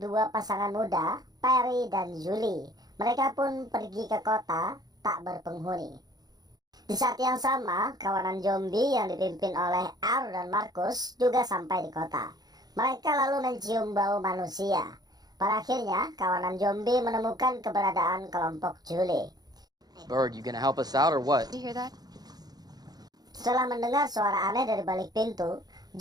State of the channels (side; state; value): left; late; 0.19 ms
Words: dua pasangan muda, Perry dan Julie. Mereka pun pergi ke kota tak berpenghuni. Di saat yang sama, kawanan zombie yang dipimpin oleh R dan Marcus juga sampai di kota. Mereka lalu mencium bau manusia. Pada akhirnya, kawanan zombie menemukan keberadaan kelompok Julie. Bird, you gonna help us out or what? Did you hear that? Setelah mendengar suara aneh dari balik pintu,